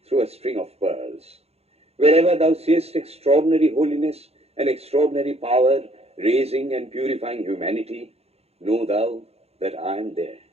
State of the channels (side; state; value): left; late; 0.30 ms